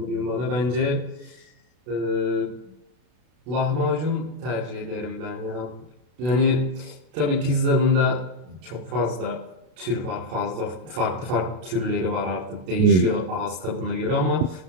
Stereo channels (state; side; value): late; left; 32 ms